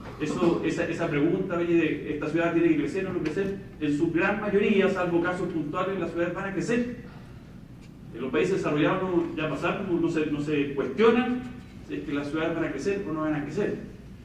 Esa pregunta, oye, de esta ciudad tiene que crecer o no crecer, en su gran mayoría, salvo casos puntuales, las ciudades van a crecer. En los países desarrollados ya pasaron, no se cuestionan si es que las ciudades van a crecer o no van a crecer.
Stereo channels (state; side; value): identical; both; correlation 1.00